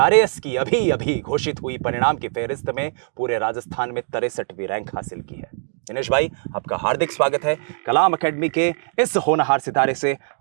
की अभी अभी घोषित हुई परिणाम की फहरिस्त में पूरे राजस्थान में 63वीं रैंक हासिल की है। दिनेश भाई, आपका हार्दिक स्वागत है। कलाम एकेडमी के इस होनहार सितारे से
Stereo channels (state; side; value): silent; left; 64 dB below the other